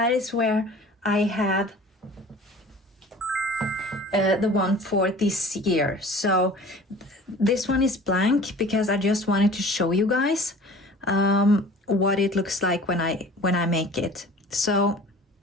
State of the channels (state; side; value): normal; both; correlation 0.44